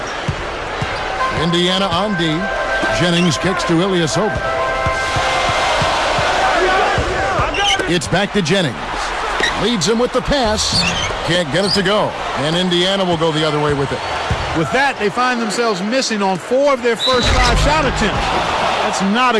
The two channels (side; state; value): both; identical; correlation 1.00